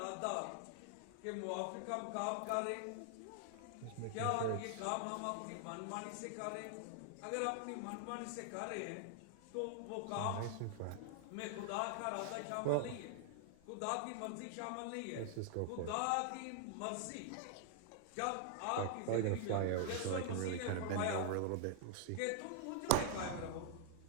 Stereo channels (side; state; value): both; different; correlation -0.01